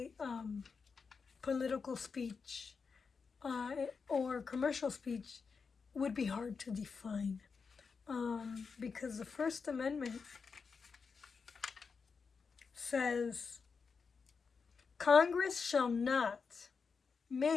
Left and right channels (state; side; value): quieter; right; 5.3 dB